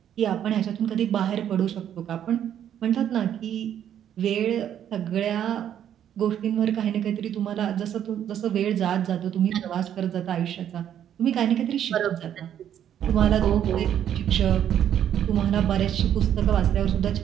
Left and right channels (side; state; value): left; quieter; 10.0 dB